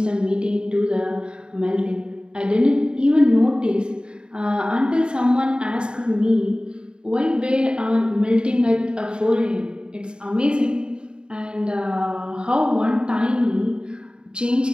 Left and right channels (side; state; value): left; late; 0.050 ms